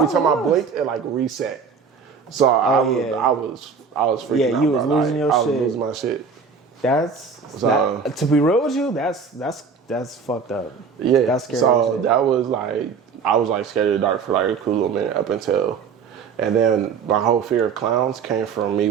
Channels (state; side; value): quieter; left; 5.6 dB